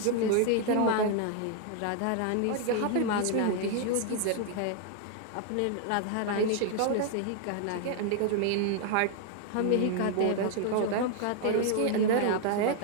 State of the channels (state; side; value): different; both; correlation 0.00